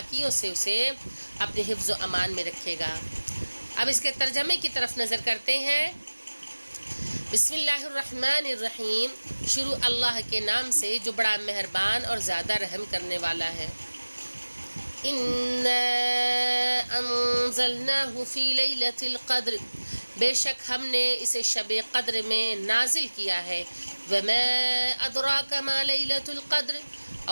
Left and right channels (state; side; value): inverted; both; correlation -1.00